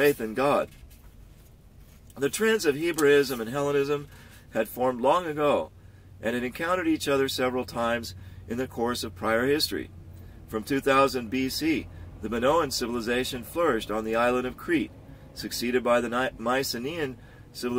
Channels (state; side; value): identical; both; correlation 1.00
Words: in God. The trends of Hebraism and Hellenism had formed long ago and had encountered each other several times in the course of prior history. From 2000 BC, the Minoan civilization flourished on the island of Crete, succeeded by the Mycenaean